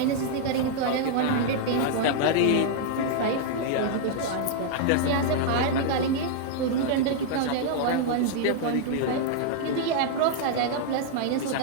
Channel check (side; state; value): both; different; correlation -0.01